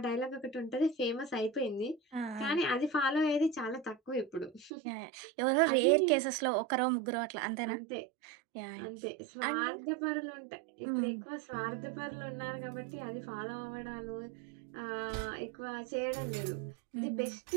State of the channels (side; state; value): left; drops out; at 4.7 s